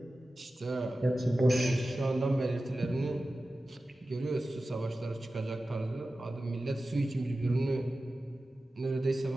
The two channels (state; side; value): normal; both; correlation 0.95